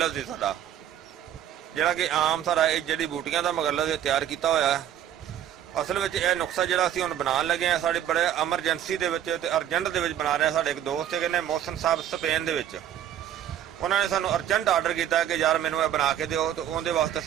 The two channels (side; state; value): left; quieter; 10.7 dB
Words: है साडा, जिहड़ा कि आम सारा जड़ी बूटियां का मुगल्लज़ तैयार किया होया है। असल में यह नुस्खा जो असीं हुण बनाउण लगे हैं, साडे बड़े एमरजेंसी दे विच ते अर्जेंट दे विच बना रहे हैं। साडे एक दोस्त है मोहसिन साहब स्पेन दे विच, उन्होंने सानू अर्जेंट आर्डर किया कि यार मैनू बना के दिओ। तो उहदे वास्ते